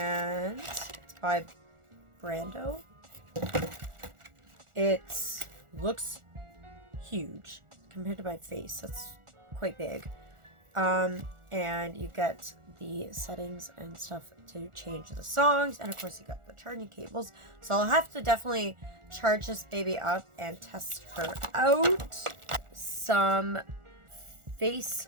it's by Brando. It looks huge compared to my face. That's quite big. And you get the settings and stuff to change the songs, and of course you got the charging cables. So I'll have to definitely charge this baby up and test her out. Some face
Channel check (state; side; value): late; left; 1.4 ms